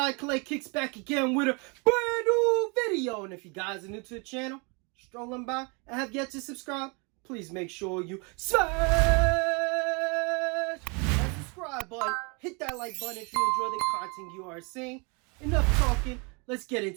Clay kicks back again with a brand new video. And if you guys are new to the channel, strolling by and have yet to subscribe, please make sure you smash that subscribe button. Hit that like button if you enjoy the content you are seeing. Enough talking, let's get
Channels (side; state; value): left; quieter; 32.1 dB